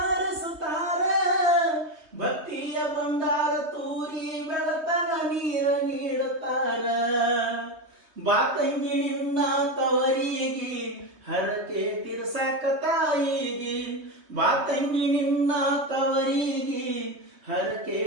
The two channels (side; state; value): left; late; 3.2 ms